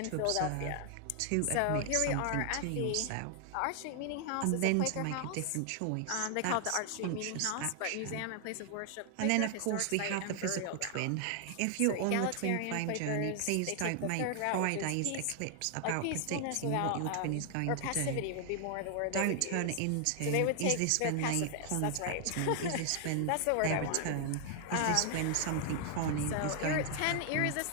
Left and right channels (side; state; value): both; different; correlation 0.00